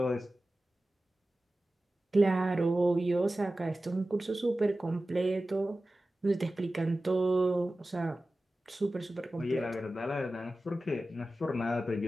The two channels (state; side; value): normal; both; correlation 0.95